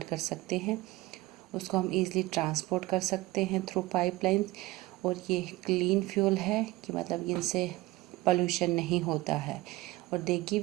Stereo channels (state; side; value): quieter; left; 19.6 dB